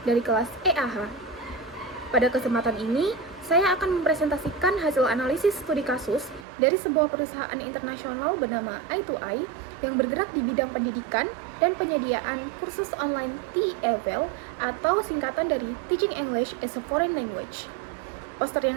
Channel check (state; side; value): drops out; left; at 6.5 s